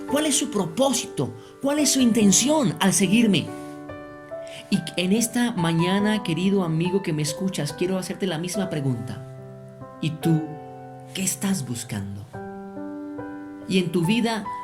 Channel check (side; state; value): both; identical; correlation 1.00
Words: ¿Cuál es su propósito? ¿Cuál es su intención al seguirme? Y en esta mañana, querido amigo que me escuchas, quiero hacerte la misma pregunta. ¿Y tú qué estás buscando? Y en tu vida,